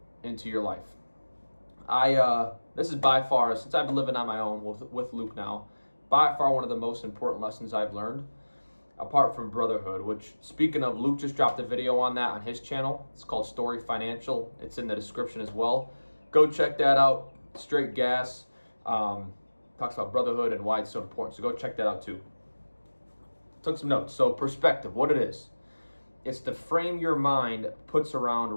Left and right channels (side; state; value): both; inverted; correlation -1.00